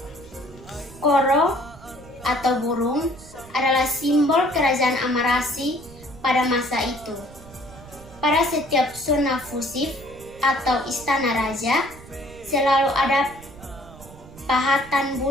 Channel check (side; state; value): right; noise; rumble, 19 dB below the sound